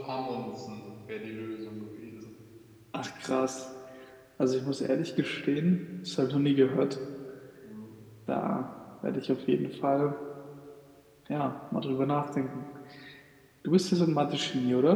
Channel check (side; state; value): both; identical; correlation 1.00